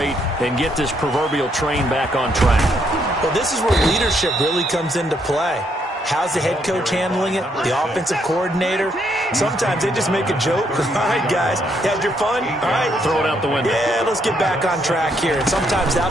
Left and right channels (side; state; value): both; normal; correlation 0.73